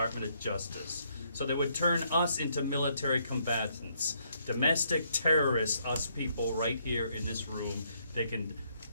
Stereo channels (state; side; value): inverted; both; correlation -0.72